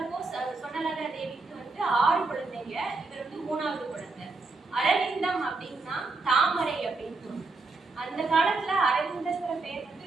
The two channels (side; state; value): left; quieter; 3.6 dB